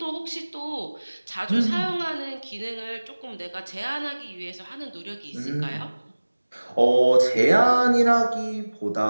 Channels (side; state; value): both; inverted; correlation -1.00